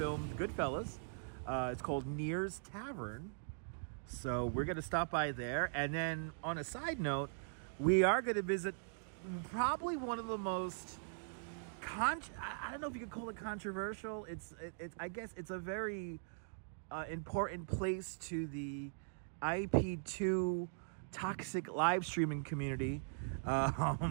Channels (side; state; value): left; silent; digital silence